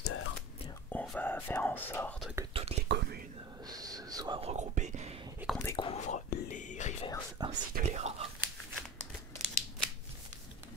on va faire en sorte que toutes les communes se soient regroupées et qu'on découvre les reverse ainsi que les rares.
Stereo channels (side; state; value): both; normal; correlation 0.32